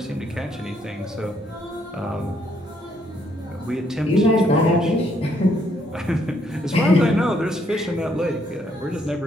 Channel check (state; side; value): normal; both; correlation 0.71